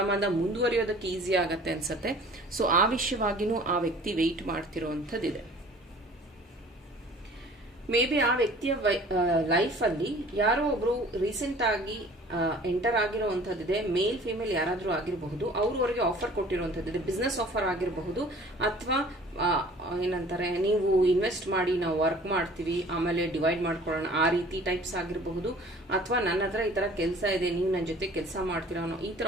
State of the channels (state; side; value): normal; both; correlation 0.49